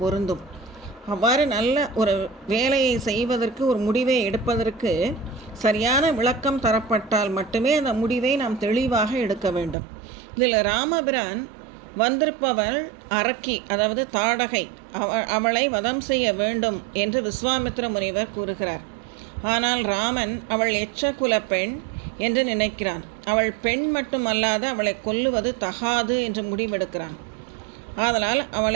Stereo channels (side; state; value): left; drops out; at 9.8 s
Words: பொருந்தும். அவ்வாறு நல்ல ஒரு வேலையை செய்வதற்கு, ஒரு முடிவை எடுப்பதற்கு சரியான விளக்கம் தரப்பட்டால் மட்டுமே அந்த முடிவை நாம் தெளிவாக எடுக்க வேண்டும். இதில் ராமபிரான் வந்திருப்பவள் அரக்கி, அதாவது தாடகை, அவளை வதம் செய்ய வேண்டும் என்று விஸ்வாமித்ர முனிவர் கூறுகிறார். ஆனால் ராமன் அவள் எச்சகுல பெண் என்று நினைக்கிறான். அவள் பெண் மட்டுமல்லாது அவளை கொல்லுவது தகாது என்று முடிவெடுக்கிறான். ஆதலால்